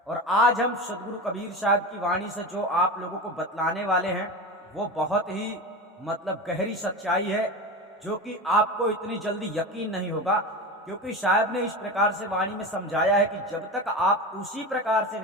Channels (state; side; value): normal; both; correlation 0.25